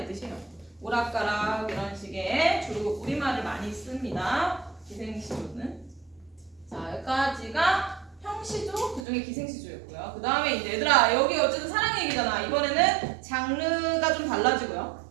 뜻이에요. 오락가락 이런 식의 주로 우리말을 많이 씁니다. 기생시조는. 자, 여기까지가 형시조, 그중에 기생시조였고요. 그 다음에 이제 얘들아 여기 어쨌든 사랑 얘기잖아. 이번에는 장르가 좀 달라지고요.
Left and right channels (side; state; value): left; drops out; at 9.1 s